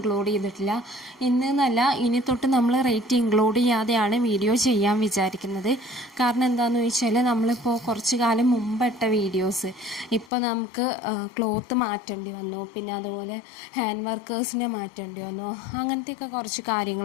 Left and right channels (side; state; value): right; drops out; at 10.3 s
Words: ചെയ്തിട്ടില്ല. ഇന്ന് എന്നല്ല, ഇനി തൊട്ട് നമ്മൾ റേറ്റ് ഇൻക്ലൂഡ് ചെയ്യാതെയാണ് വീഡിയോ ചെയ്യാൻ വിചാരിക്കുന്നത്. കാരണം എന്താണെന്ന് ചോദിച്ചാൽ നമ്മളിപ്പോൾ കുറച്ച് കാലം മുമ്പിട്ട വീഡിയോസ് ഇപ്പോൾ നമുക്ക് ക്ലോത്ത് മാറ്റേണ്ടി വന്നു, പിന്നെ അതുപോലെ ഹാൻഡ് വർക്കേഴ്സിനെ മാറ്റേണ്ടി വന്നു, അങ്ങനത്തെയൊക്കെ കുറച്ച്